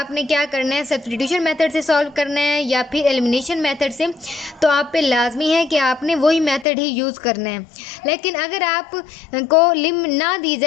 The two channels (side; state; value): right; drops out; at 6.7 s